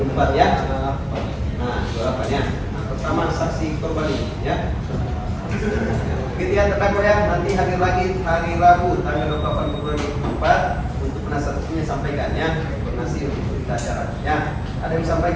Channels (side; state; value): both; identical; correlation 1.00